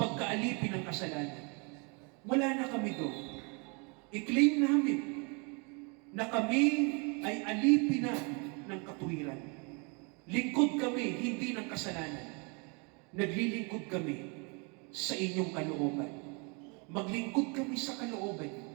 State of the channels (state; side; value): quieter; left; 32.9 dB